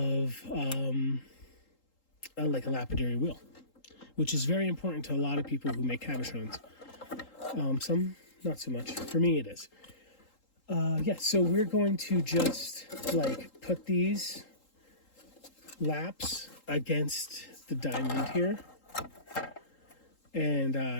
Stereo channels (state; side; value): late; right; 3.8 ms